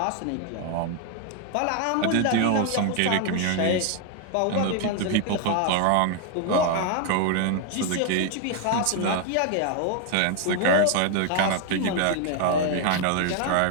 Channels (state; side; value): different; both; correlation 0.00